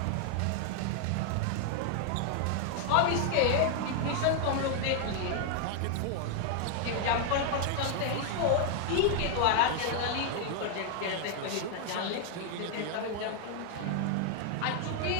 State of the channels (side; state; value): both; different; correlation 0.00